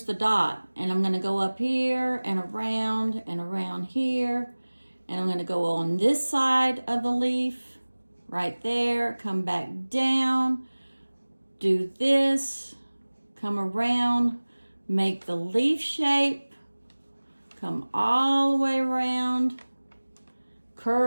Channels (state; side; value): inverted; both; correlation -1.00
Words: the dot, and I'm going to go up here and around here, and I'm going to go on this side of the leaf right there, come back down, do this, come around, make the leaf shape, come all the way around,